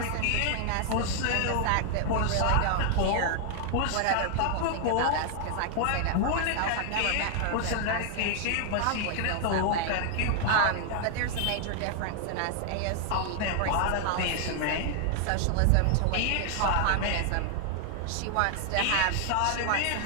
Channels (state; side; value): different; both; correlation 0.00